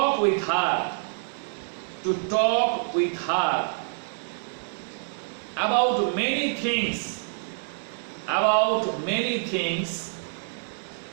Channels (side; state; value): left; silent; digital silence